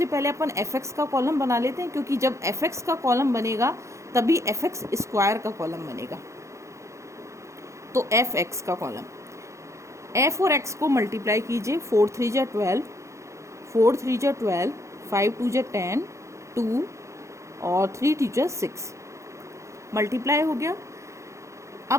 पहले अपन एफ एक्स का कॉलम बना लेते हैं, क्योंकि जब एफ एक्स का कॉलम बनेगा तभी एफ एक्स स्क्वायर का कॉलम बनेगा। तो एफ एक्स का कॉलम, एफ और एक्स को मल्टीप्लाई कीजिए। 4 3 जा 12, 4 3 जा 12, 5 2 जा 10, 2 और 3 2 जा 6 मल्टीप्लाई हो गया।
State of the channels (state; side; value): late; left; 0.14 ms